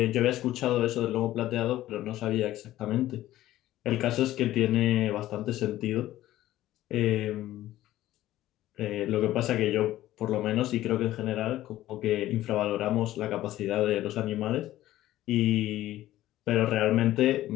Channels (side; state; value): right; quieter; 14.6 dB